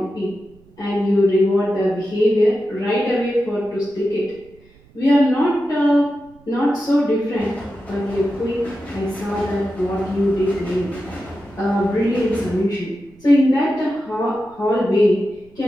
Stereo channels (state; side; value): noise; right; rumble, 28 dB below the sound